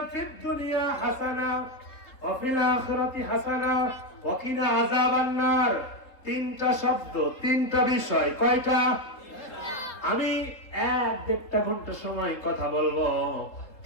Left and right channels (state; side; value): late; right; 3.8 ms